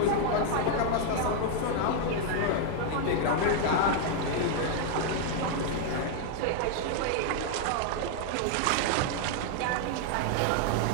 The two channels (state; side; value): different; both; correlation 0.00